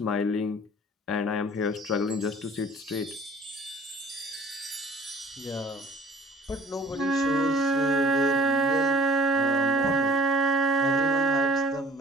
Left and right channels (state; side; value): normal; both; correlation 0.51